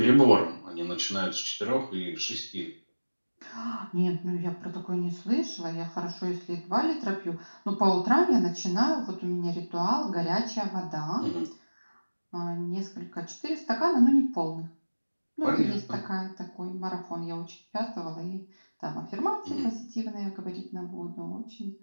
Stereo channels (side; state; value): both; inverted; correlation -1.00